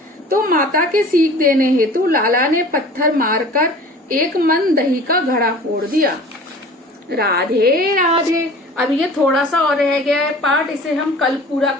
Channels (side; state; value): both; normal; correlation 0.43